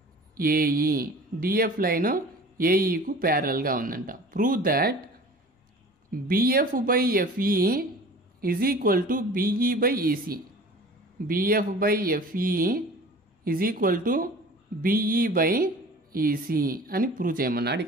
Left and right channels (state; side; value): normal; both; correlation 0.43